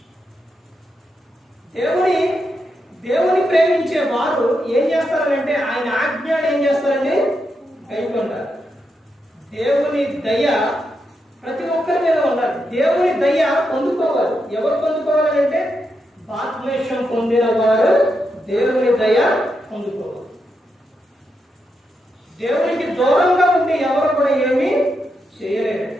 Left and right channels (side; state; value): both; normal; correlation 0.84